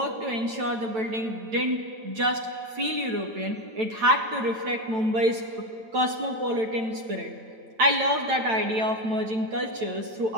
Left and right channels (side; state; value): left; late; 9.0 ms